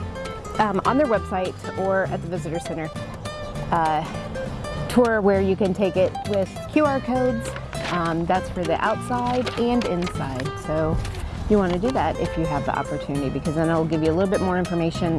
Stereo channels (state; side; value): identical; both; correlation 1.00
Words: on their website or at the visitor center tour where you can take it with QR codes. That's for the outside and inside. So you want to do that if you have the opportunity, because then it'll give you a little bit more information